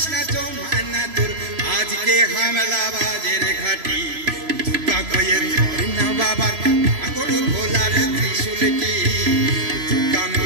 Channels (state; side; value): late; left; 3.0 ms